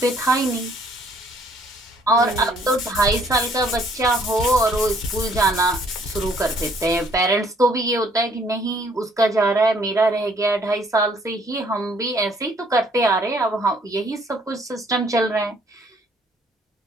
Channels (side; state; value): both; normal; correlation 0.63